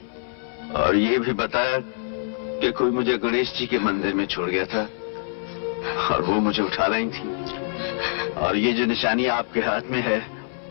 और ये भी बताया कि कोई मुझे गणेश जी के मंदिर में छोड़ गया था और वो मुझे उठा लाई थी। और ये जो निशानी आपके हाथ में है,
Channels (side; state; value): right; silent; 62 dB below the other